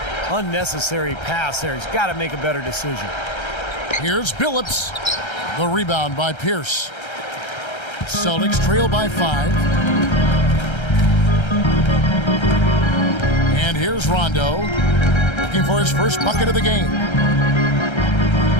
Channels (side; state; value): right; late; 1.3 ms